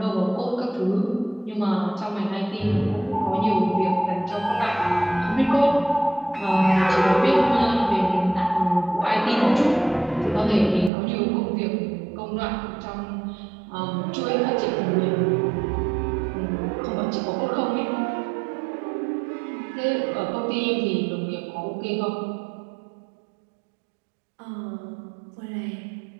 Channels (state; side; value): drops out; left; at 10.9 s